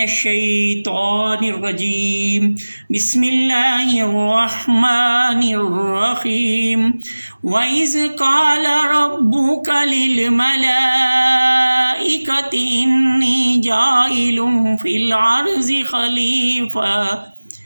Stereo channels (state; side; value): inverted; both; correlation -1.00